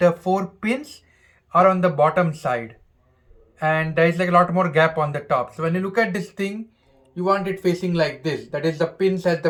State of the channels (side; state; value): both; identical; correlation 1.00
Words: 4 pins are on the bottom side, and there is like a lot more gap on the top. So when you look at this thing, you want it facing like this. That is the pins at